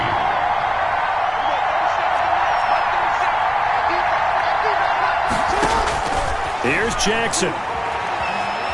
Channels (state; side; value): identical; both; correlation 1.00